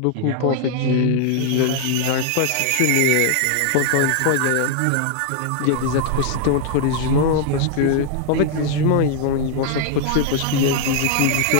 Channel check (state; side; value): different; both; correlation 0.00